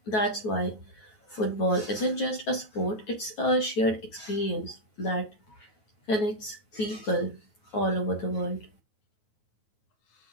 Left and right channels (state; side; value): late; right; 9.3 ms